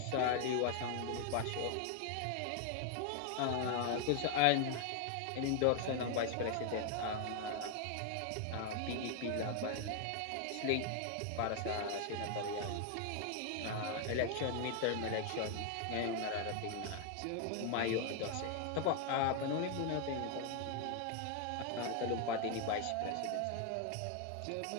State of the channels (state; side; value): different; both; correlation 0.00